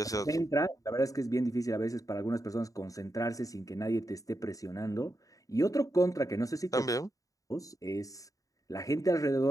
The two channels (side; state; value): right; late; 0.16 ms